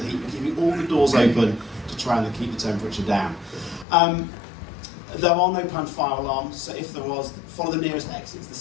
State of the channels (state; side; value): drops out; right; at 3.9 s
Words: the heat. We're keeping all the doors open to try and keep the temperature down. There are no planned fire alarms, so if there was, follow the nearest exits, the